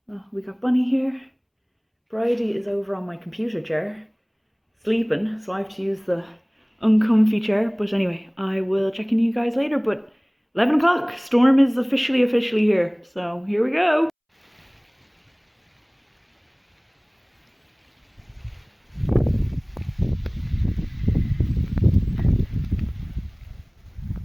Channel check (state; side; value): identical; both; correlation 1.00